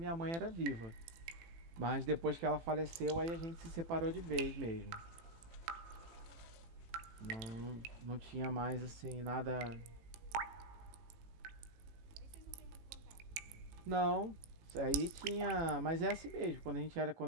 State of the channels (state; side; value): late; left; 18 ms